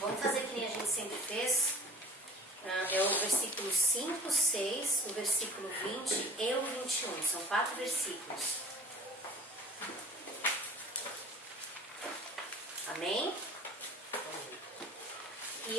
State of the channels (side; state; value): both; normal; correlation 0.46